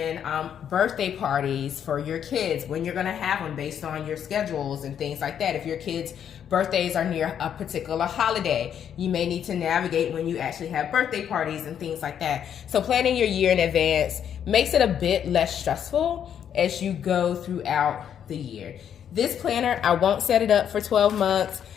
birthday parties for your kids, when you're going to have them based on your schedules and things like that. If your kids' birthdays are near a particular holiday, you may need to navigate when you actually have birthday parties and things like that. So planning your year in advance makes it a bit less stressful as you go throughout the year. This planner, I won't set it up for 12 months.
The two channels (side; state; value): right; quieter; 8.9 dB